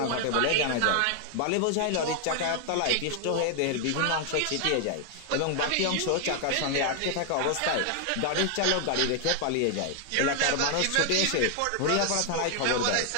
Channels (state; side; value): different; both; correlation 0.00